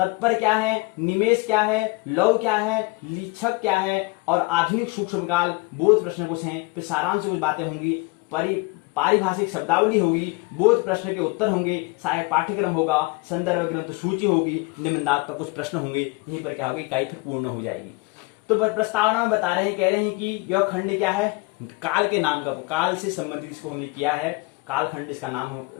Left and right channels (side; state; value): right; quieter; 25.4 dB